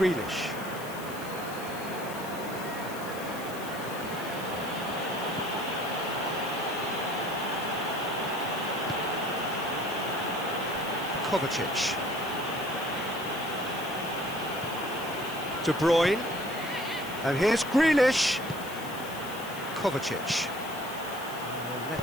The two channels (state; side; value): noise; left; hiss, 14 dB below the sound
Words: Kovacic. De Bruyne. And here's Grealish. Kovacic.